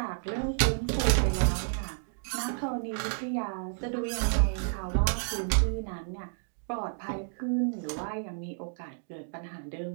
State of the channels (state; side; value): silent; left; digital silence